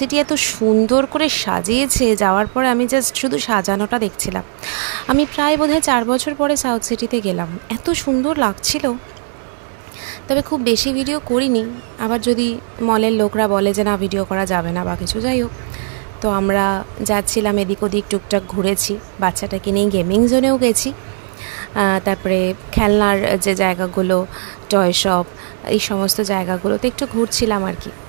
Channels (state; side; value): silent; left; digital silence